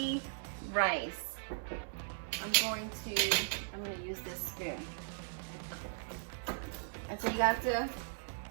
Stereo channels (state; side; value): silent; left; 53 dB below the other